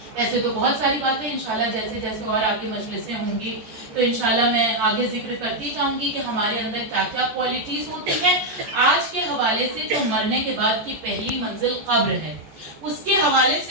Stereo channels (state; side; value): late; left; 14 ms